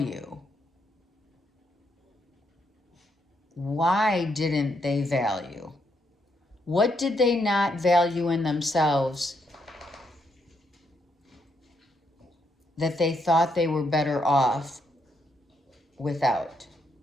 Why didn't they value? What did they not value in themselves that they thought they were better off without?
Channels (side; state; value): both; normal; correlation 0.77